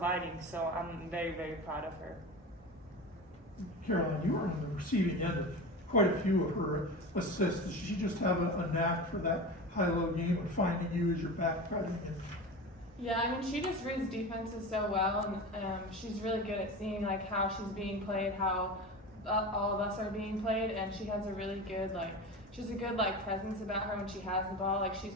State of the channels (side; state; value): both; normal; correlation 0.29